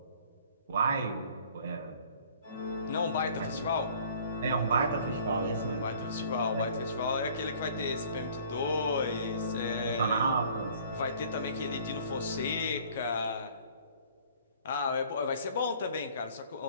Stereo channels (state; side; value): inverted; both; correlation -0.53